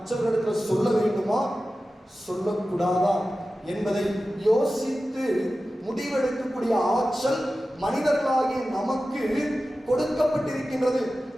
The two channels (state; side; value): normal; both; correlation 0.94